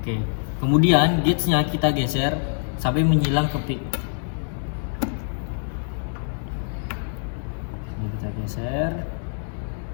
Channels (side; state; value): right; silent; digital silence